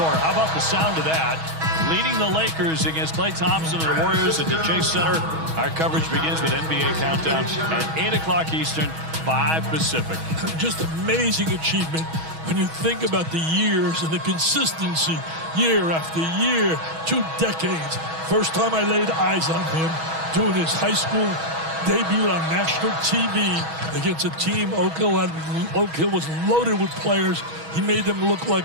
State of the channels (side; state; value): left; late; 6.2 ms